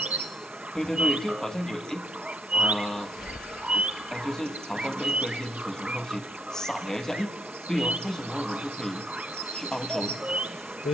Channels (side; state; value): both; normal; correlation 0.73